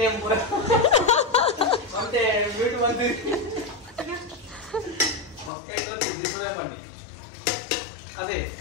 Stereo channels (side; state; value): right; drops out; at 5.5 s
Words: ನೇಮ್ ಪೂರ ಮತ್ತೆ ಮ್ಯೂಟ್ ಬಂದು ಮಕ್ಕಳು ಡಿಸ್ಪ್ಲೇ ಮಾಡಿ ಅದೇ